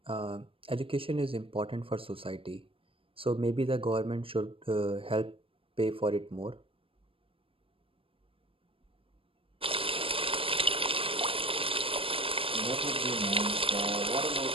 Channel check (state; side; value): late; left; 0.26 ms